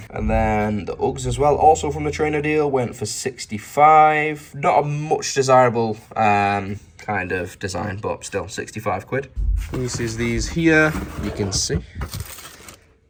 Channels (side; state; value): both; identical; correlation 1.00